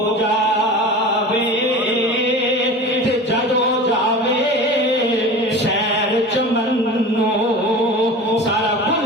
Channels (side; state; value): both; normal; correlation 0.35